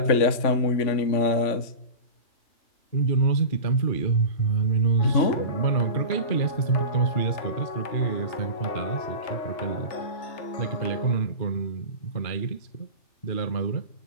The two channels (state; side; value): late; right; 3.5 ms